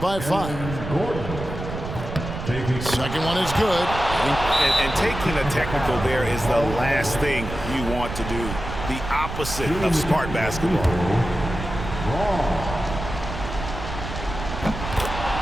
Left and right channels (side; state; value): right; noise; rumble, 8 dB below the sound